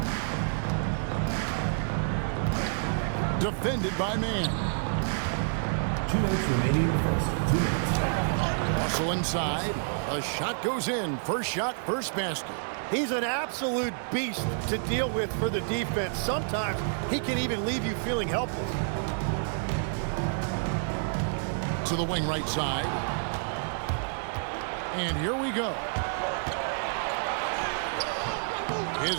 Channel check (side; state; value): left; silent; digital silence